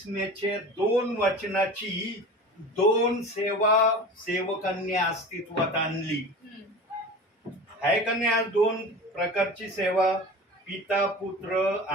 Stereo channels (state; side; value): normal; both; correlation 0.35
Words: 2 वचनाची 2 सेवा सेवकांनी अस्तित्वात आणली आहे का नाही. आज 2 प्रकारची सेवा, पिता पुत्र